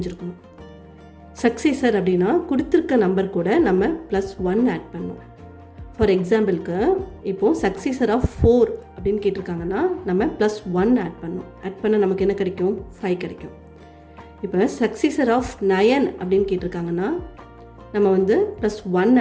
சக்சீசர் அப்படின்னா கொடுத்துருக்க நம்பர் கூட நம்ம +1 ஆட் பண்ணோம். ஃபார் எக்ஸாம்பிளுக்கு இப்போது சக்சீசர் ஆஃப் 4 அப்படின்னு கேட்டிருக்காங்கன்னா நம்ம +1 ஆட் பண்ணோம். ஆட் பண்ணால் நமக்கு என்ன கிடைக்கும்? 5 கிடைக்கும். இப்போ சக்சீசர் ஆஃப் 9 அப்படின்னு கேட்டிருக்காங்கன்னா நம்ம +1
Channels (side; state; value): both; identical; correlation 1.00